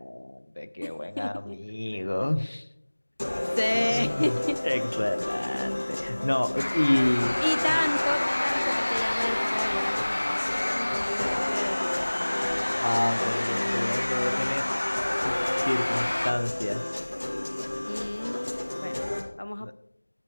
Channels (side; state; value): both; inverted; correlation -1.00